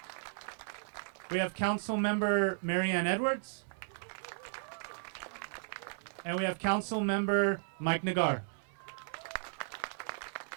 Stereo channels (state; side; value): silent; left; 54 dB below the other